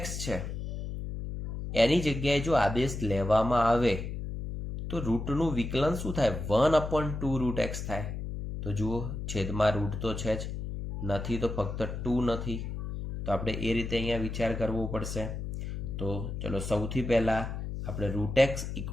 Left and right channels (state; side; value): noise; left; hum, 5 dB below the sound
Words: છે એની જગ્યાએ જો આદેશ લેવામાં આવે તો રૂટનું વિકલન શું થાય? 1/2 √x થાય. તો જુઓ, છેદમાં રૂટ તો છે જ, નથી તો ફક્ત 2 નથી. તો આપણે એ રીતે અહીંયા વિચાર કરવો પડશે. તો ચલો સૌથી પહેલાં આપણે √x